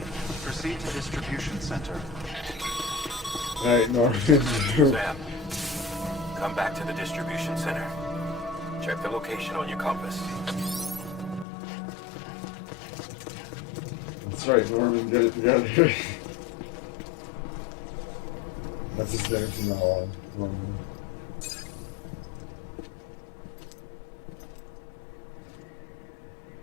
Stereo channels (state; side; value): drops out; right; at 11.5 s